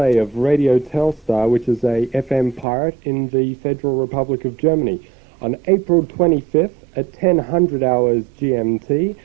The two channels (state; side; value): drops out; left; at 2.7 s